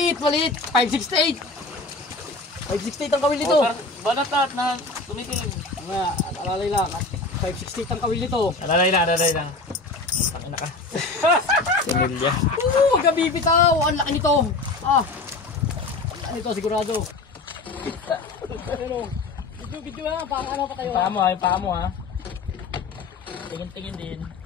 568. 568 ang kawil nito. Balatat na tumitingin. Nga, alalay lang. 568 ang kawil nito. Alalay lang. Tangina ka. Similya. Oo, huwag ka bibitaw. Ang laki nito. Ang laki nito, sigurado. Ano? Video lang. Parang ano pa kayo? Yung paa mo ha. Tingin din.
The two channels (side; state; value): right; quieter; 3.4 dB